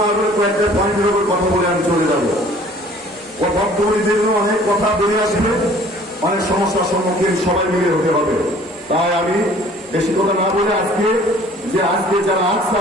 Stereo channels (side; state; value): both; normal; correlation 0.52